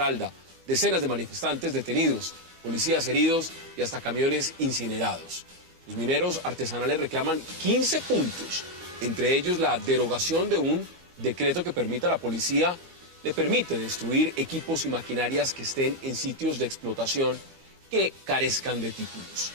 decenas de manifestantes detenidos, policías heridos y hasta camiones incinerados. Los mineros artesanales reclaman 15 puntos, entre ellos la derogación de un decreto que permite a la policía, le permite destruir equipos y maquinarias que estén en sitios de explotación que carezcan de títulos.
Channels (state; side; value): late; left; 12 ms